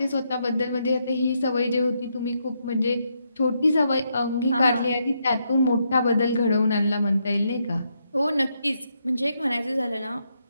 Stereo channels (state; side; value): inverted; both; correlation -0.79